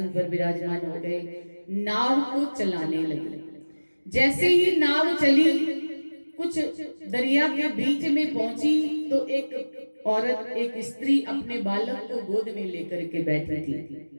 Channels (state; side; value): inverted; both; correlation -1.00